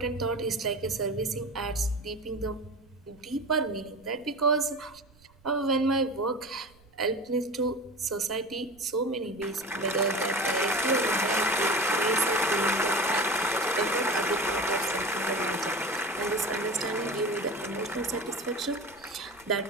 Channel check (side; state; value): right; noise; rumble, 29 dB below the sound